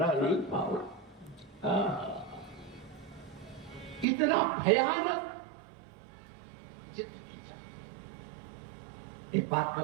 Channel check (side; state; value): left; drops out; at 4.0 s